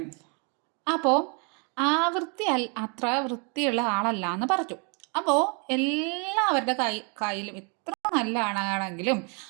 അപ്പോൾ ആവൃത്തി അത്ര വൃത്തിയുള്ള ആളല്ല എന്ന് പറഞ്ഞു. അപ്പോൾ എല്ലാവരുടെ കയ്യിലും എത്ര നല്ല ആളാണെങ്കിലും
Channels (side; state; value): left; quieter; 35.0 dB